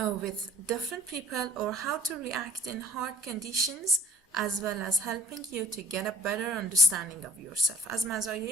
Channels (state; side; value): normal; both; correlation 0.49